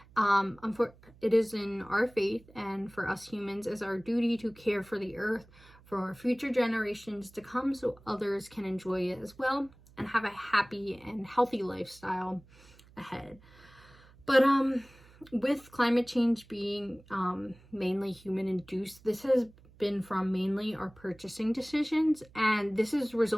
It is in our faith and for us humans as our duty to care for the earth for future generations to come, so others can enjoy it as well and have a happy and healthy lifestyle ahead. But with climate change being mainly human induced, this has been from mainly our purchasing decisions, and this is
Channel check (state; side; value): noise; right; hum, 25 dB below the sound